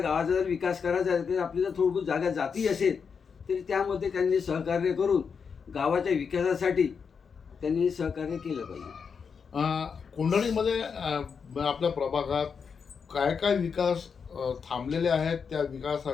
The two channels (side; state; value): right; quieter; 6.1 dB